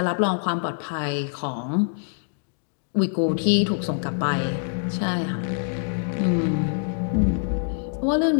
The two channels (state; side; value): silent; right; digital silence